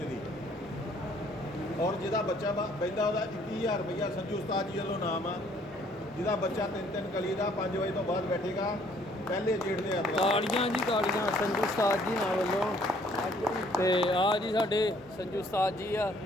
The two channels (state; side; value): normal; both; correlation 0.62